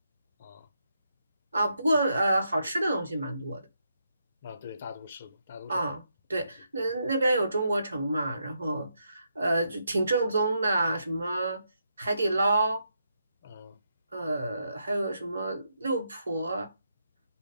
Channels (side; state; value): both; inverted; correlation -0.80